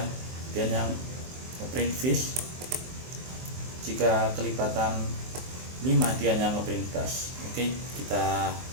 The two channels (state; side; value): late; left; 23 ms